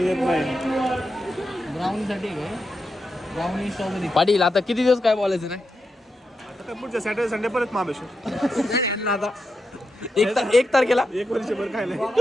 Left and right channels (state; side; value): normal; both; correlation 0.86